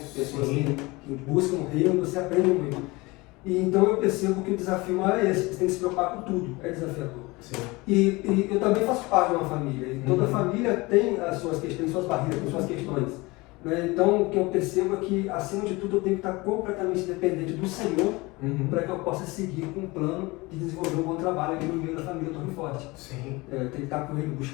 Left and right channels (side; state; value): right; quieter; 23.3 dB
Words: pessoas que buscam o reino, você aprende muito. E então eu percebo que o desafio maior é esse, você tem que se preocupar com tudo, é desafiador. Sim. E eu também faço parte de uma família, e toda família tem as suas questões, suas barreiras, tem suas questões. Né? Então o que eu percebo é que, acima de tudo, eu tenho que estar completamente dependente do Senhor para que eu possa seguir com um plano de desenvolver um bom trabalho aqui no meio da família Torre Forte. Sim. Tem que estar com ele,